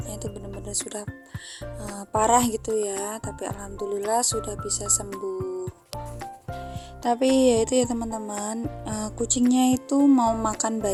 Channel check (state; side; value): identical; both; correlation 1.00